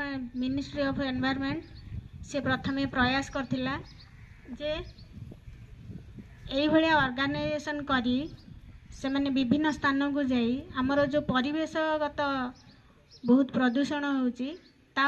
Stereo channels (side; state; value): both; identical; correlation 1.00